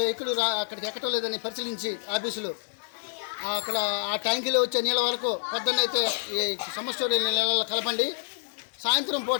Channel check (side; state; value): right; silent; digital silence